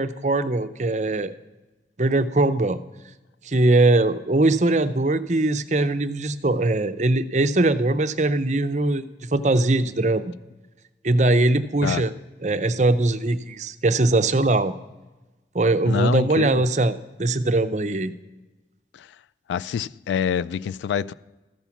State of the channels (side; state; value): both; normal; correlation 0.55